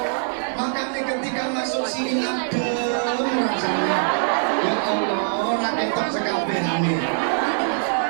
Makanya ketika masuk sini adem rasanya. Ya Allah, rakyat sekabehane.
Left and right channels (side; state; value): left; silent; digital silence